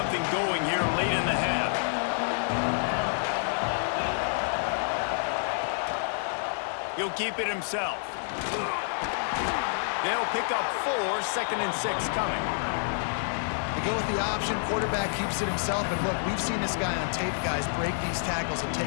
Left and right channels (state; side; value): silent; right; 59 dB below the other